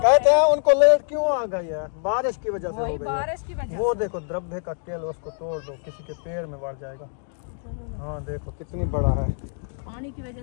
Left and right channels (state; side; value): silent; right; digital silence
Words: हैं उनको लेट क्यों आ गई है? बारिश की वजह से हो गई है। बारिश की वजह वो देखो द्रव्य का केल, उसको तोड़ दो, किसी के पैर में बढ़ जाएगा। हाँ देखो कितनी बड़ा है, पानी की वजह